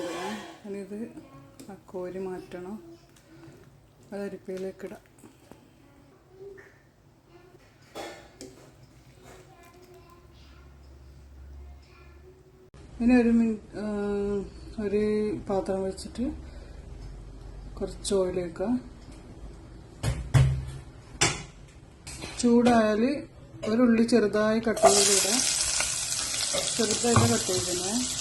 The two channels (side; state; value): both; identical; correlation 1.00